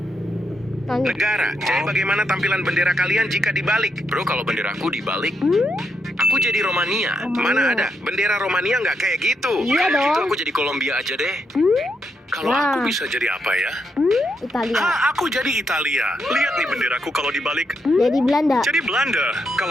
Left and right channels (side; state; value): both; normal; correlation 0.80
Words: Lanjut. negara. Jadi bagaimana tampilan bendera kalian jika dibalik? Bro, kalau bendera aku dibalik, aku jadi Romania. Mana ada? Bendera Romania nggak kayak gitu. Iya Gitu dong. aku jadi Kolombia aja deh. Kalau Nah. aku bisa jadi apa ya? Italia. Aku jadi Italia. Lihat nih benderaku kalau dibalik. Jadi Belanda. Jadi Belanda.